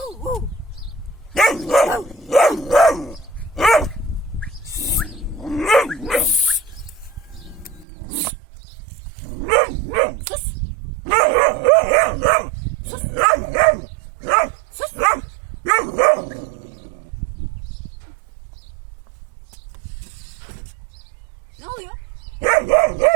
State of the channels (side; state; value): left; drops out; at 7.9 s